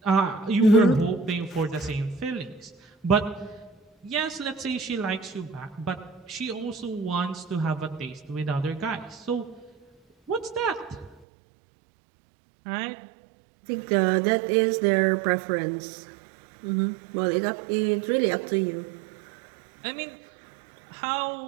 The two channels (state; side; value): drops out; left; at 11.2 s